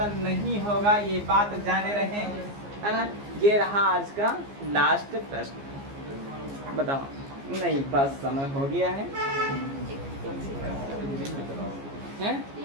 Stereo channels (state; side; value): late; left; 15 ms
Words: नहीं होगा। ये बात जाने रहे, है ना। ये रहा आज का लास्ट प्रश्न। बताओ। नहीं बस समय हो गया है। हैं?